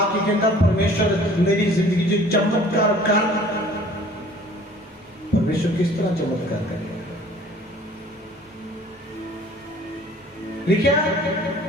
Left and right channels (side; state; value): both; normal; correlation 0.51